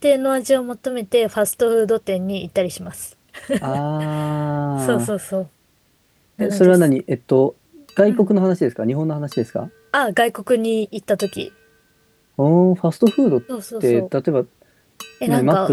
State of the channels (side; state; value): both; identical; correlation 1.00